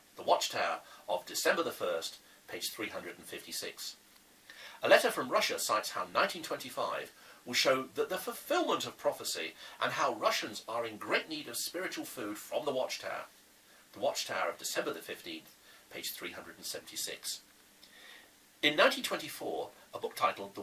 The Watchtower of December the 1st, page 356. A letter from Russia cites how 1925 will show that the fulfillment of prophecy and how Russians are in great need of spiritual food from the Watchtower. The Watchtower of December the 15th, page 376. In 1924, a book titled The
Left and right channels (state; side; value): identical; both; correlation 1.00